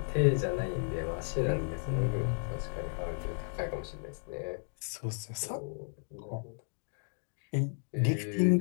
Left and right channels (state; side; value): silent; right; digital silence